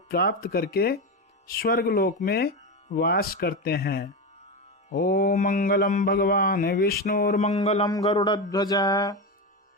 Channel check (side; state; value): both; normal; correlation 0.16